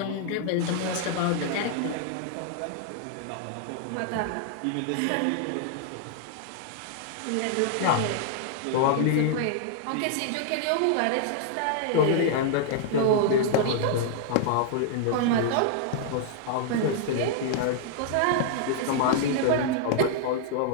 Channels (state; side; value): different; both; correlation -0.01